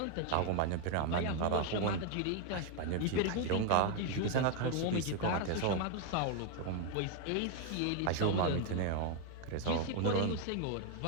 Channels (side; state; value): both; different; correlation 0.01